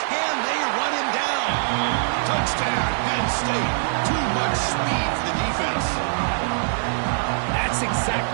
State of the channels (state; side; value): silent; left; digital silence